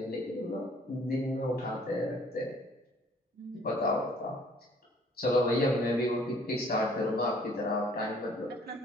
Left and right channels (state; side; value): normal; both; correlation 0.58